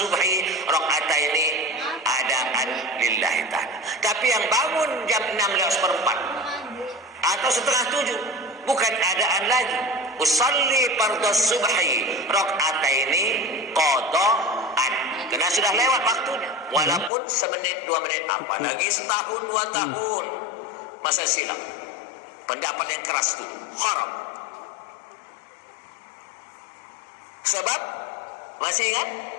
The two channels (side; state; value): right; drops out; at 17.1 s